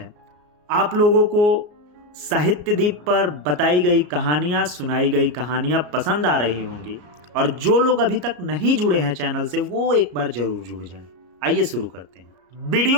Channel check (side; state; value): left; late; 34 ms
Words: आप लोगों को साहित्य दीप पर बताई गई कहानियां, सुनाई गई कहानियां पसंद आ रही होंगी, और जो लोग अभी तक नहीं जुड़े हैं चैनल से वो एक बार जरूर जुड़ जाएं। आइए शुरू करते हैं।